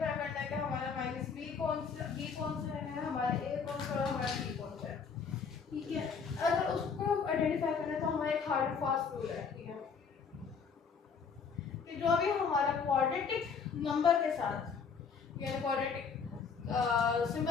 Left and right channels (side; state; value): right; quieter; 5.9 dB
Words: करना है कि हमारा माइनस b कौन सा है, हमारा a कौन सा है, हमारा b कौन सा है। ठीक है, अगर उसको आइडेंटिफाई करना है तो हमारा एक हार्ड एंड फास्ट रूल है। ठीक है, कि जो भी हमारा क्वाड्रेटिक नंबर के साथ यानी क्वाड्रेटिक